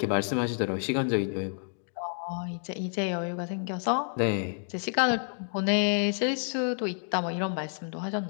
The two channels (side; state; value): right; silent; 57 dB below the other